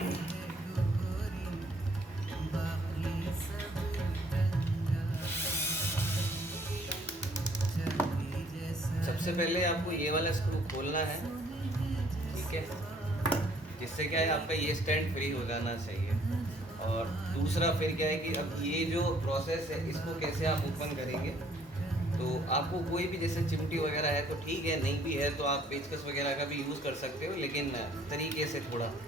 सबसे पहले आपको ये वाला स्क्रू खोलना है, ठीक है, जिससे क्या है आपका ये स्टैंड फ्री हो जाना चाहिए। और दूसरा फिर क्या है कि अब ये जो प्रोसेस है इसको कैसे आप ओपन करेंगे। तो आपको कोई भी जैसे चिमटी वगैरह है तो ठीक है, नहीं भी है तो आप पेचकस वगैरह का भी यूज़ कर सकते हो, लेकिन तरीके से थोड़ा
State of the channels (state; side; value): normal; both; correlation 0.61